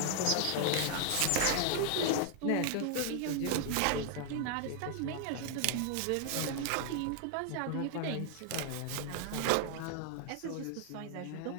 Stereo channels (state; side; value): different; both; correlation 0.00